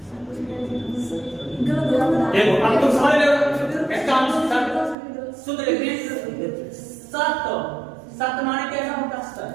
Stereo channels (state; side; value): drops out; left; at 5.0 s